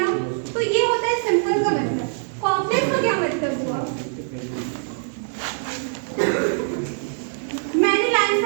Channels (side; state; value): left; silent; digital silence